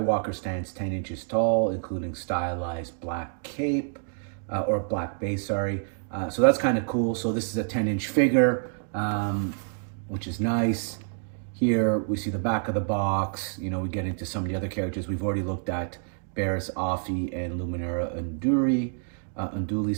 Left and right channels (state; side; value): silent; left; 60 dB below the other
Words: stands 10 inches tall, including stylized black cape, or black base, sorry. So that's kind of cool. So this is a 10-inch figure, which is nice. Here we see the back of the box. You know, we get into some of the other characters. We've already looked at Barriss, Offee, and Luminara Unduli,